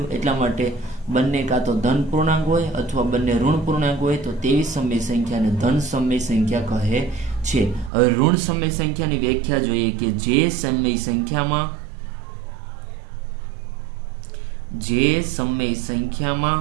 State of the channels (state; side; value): drops out; left; at 7.9 s